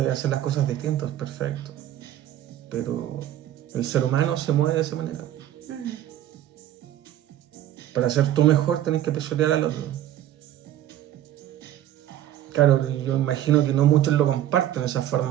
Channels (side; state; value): left; quieter; 12.1 dB